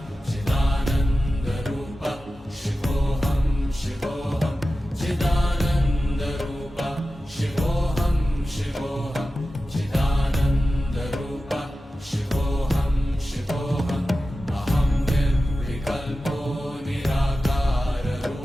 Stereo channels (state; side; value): normal; both; correlation 0.94